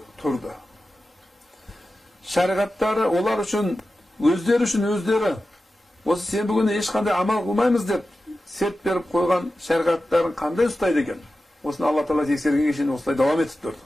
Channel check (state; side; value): normal; both; correlation 0.93